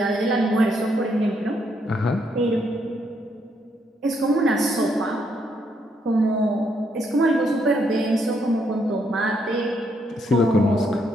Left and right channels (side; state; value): both; normal; correlation 0.75